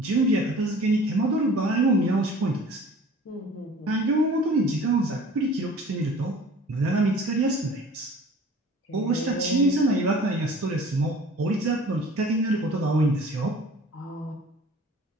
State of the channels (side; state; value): both; normal; correlation 0.46